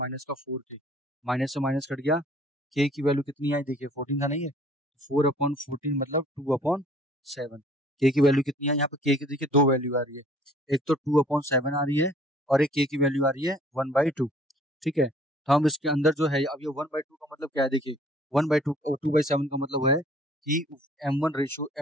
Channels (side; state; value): both; normal; correlation 0.55